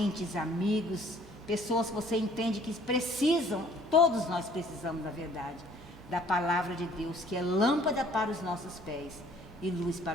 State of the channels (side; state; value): both; normal; correlation 0.57